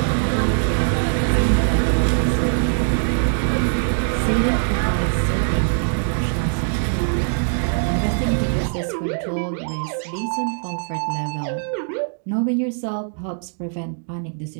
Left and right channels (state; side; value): silent; left; digital silence